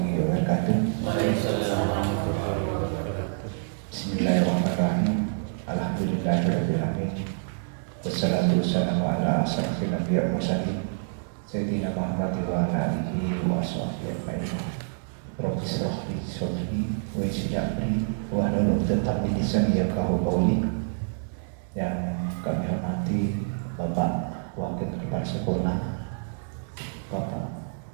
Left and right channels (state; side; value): silent; left; digital silence